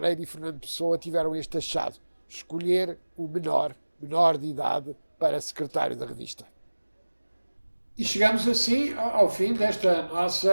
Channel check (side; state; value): both; inverted; correlation -1.00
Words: e Fernando Pessoa tiveram este achado: escolher o menor de idade para secretário da revista. E chegamos assim ao fim desta